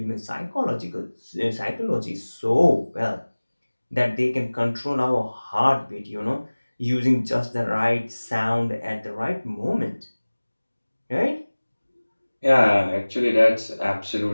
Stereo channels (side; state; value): both; inverted; correlation -1.00